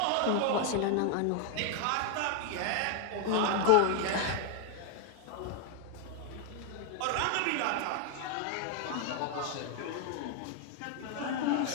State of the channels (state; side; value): different; both; correlation 0.00